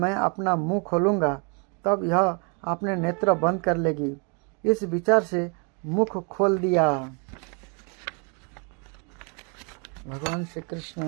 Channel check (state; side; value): quieter; left; 35.5 dB